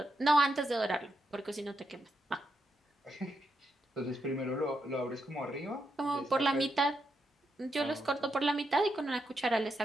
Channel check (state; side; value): normal; both; correlation 0.82